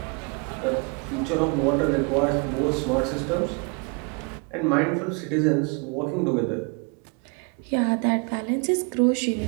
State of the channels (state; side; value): quieter; left; 33.8 dB